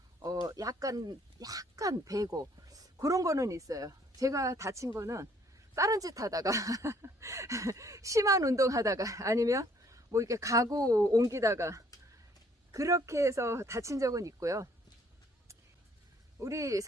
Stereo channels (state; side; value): normal; both; correlation 0.62